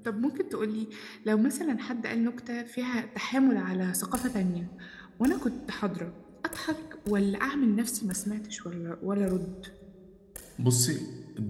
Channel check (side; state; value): both; identical; correlation 1.00